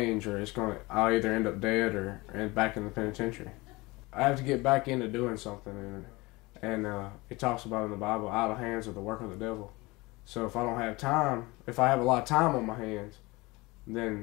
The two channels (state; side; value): quieter; right; 22.8 dB